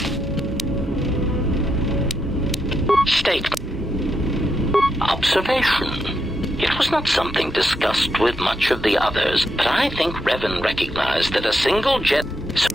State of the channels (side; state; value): both; normal; correlation 0.82